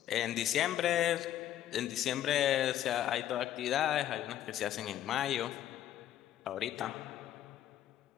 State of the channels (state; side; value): quieter; right; 11.8 dB